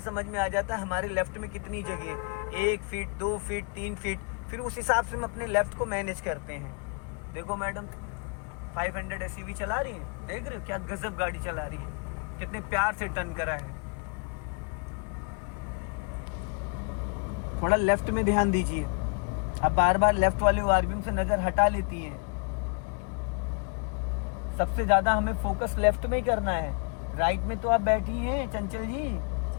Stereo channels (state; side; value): quieter; right; 35.7 dB